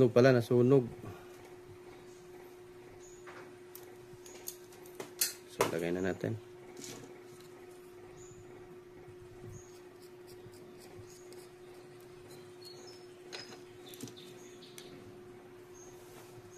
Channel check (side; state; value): both; identical; correlation 1.00